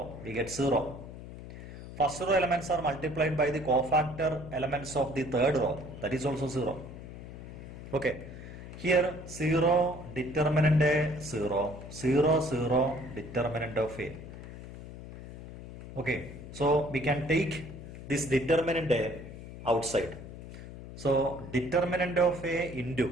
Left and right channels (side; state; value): left; noise; hum, 13 dB below the sound